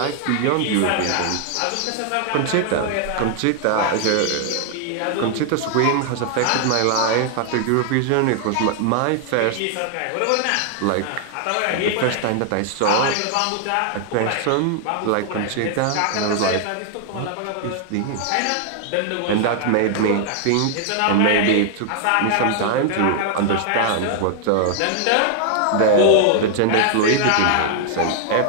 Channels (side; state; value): both; different; correlation 0.00